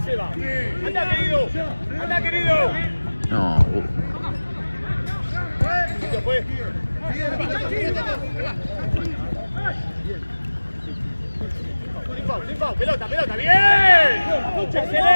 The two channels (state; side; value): inverted; both; correlation -1.00